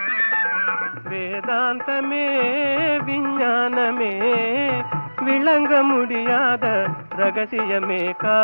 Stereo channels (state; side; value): inverted; both; correlation -1.00